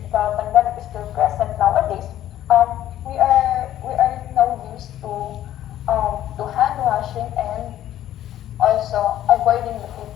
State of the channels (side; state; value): right; quieter; 12.4 dB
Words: pandemic is still present nowadays, we are now used to hand washing and also avoiding the